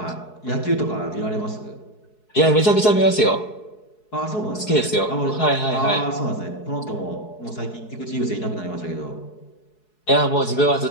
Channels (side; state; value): right; late; 4.7 ms